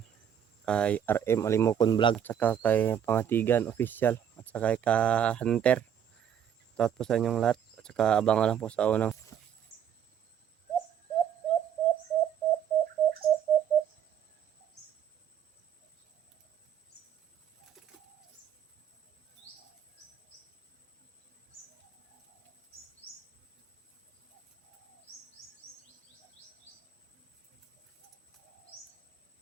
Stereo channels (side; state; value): left; quieter; 9.1 dB